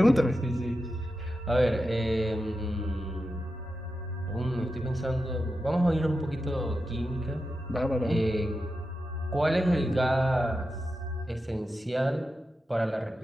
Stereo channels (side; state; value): both; normal; correlation 0.90